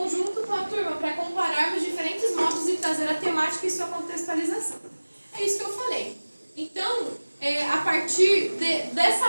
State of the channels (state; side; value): inverted; both; correlation -1.00